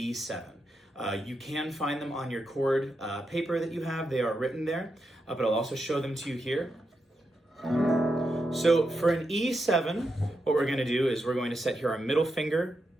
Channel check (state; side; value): normal; both; correlation 0.85